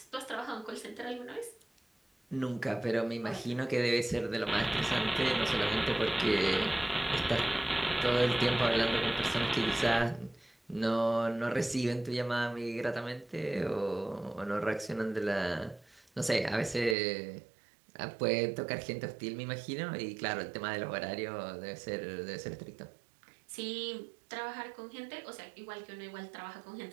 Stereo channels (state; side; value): drops out; left; at 16.9 s